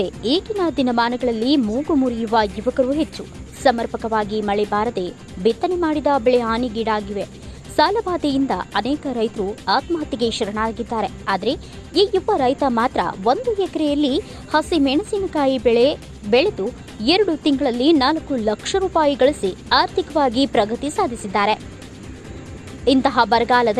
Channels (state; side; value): identical; both; correlation 1.00